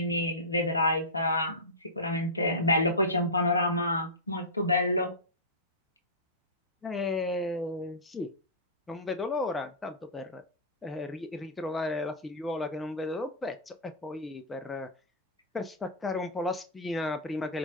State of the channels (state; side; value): normal; both; correlation -0.17